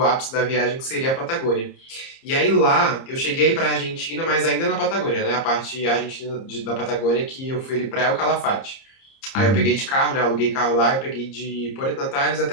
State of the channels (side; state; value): right; late; 30 ms